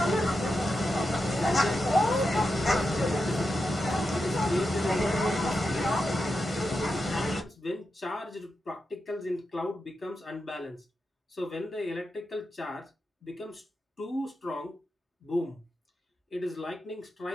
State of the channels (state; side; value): normal; both; correlation 0.88